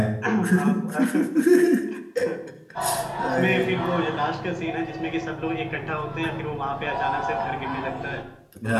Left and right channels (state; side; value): identical; both; correlation 1.00